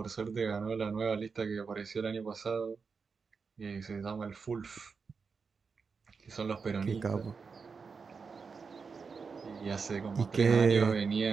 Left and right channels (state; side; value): quieter; left; 5.2 dB